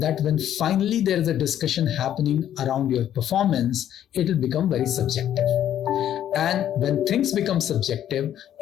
when finally there is a discussion happening around your performance, it will become very subjective. And when things become subjective,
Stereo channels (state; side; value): quieter; right; 10.9 dB